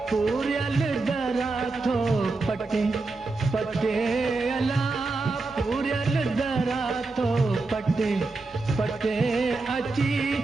पूरल दरा थो पटे पटे अला पूरल दरा थो पटे पटे अची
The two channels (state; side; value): quieter; left; 3.5 dB